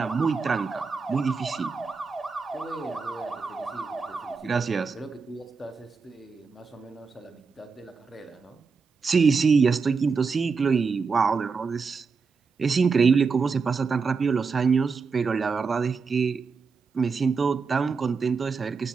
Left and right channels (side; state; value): left; quieter; 5.1 dB